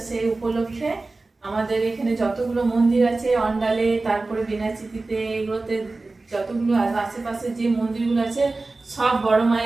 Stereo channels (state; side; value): quieter; left; 3.4 dB